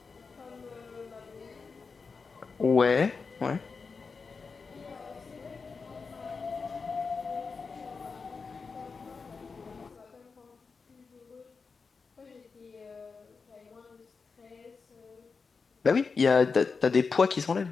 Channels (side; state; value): right; quieter; 4.8 dB